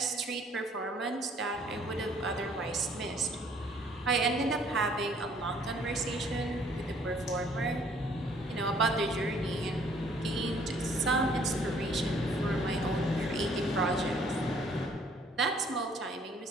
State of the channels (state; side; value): normal; both; correlation 0.61